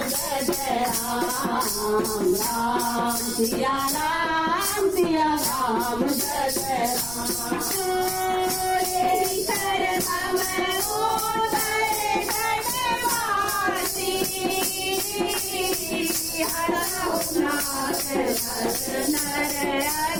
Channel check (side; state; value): right; noise; rumble, 13 dB below the sound